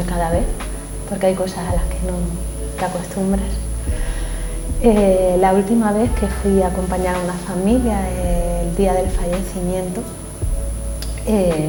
cada vez, porque hay cosas a las que no te acostumbras. La última vez que fui a acompañar a una familia el día del fallecimiento,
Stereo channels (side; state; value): both; identical; correlation 1.00